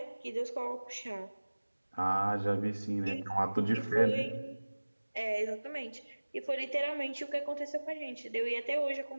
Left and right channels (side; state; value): both; inverted; correlation -1.00